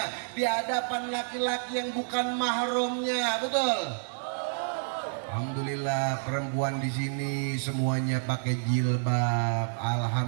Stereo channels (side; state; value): left; silent; digital silence